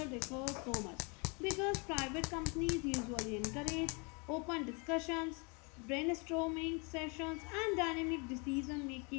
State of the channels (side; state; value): right; quieter; 32.4 dB